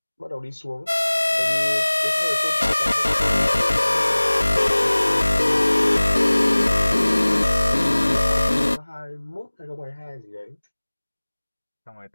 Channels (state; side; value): inverted; both; correlation -1.00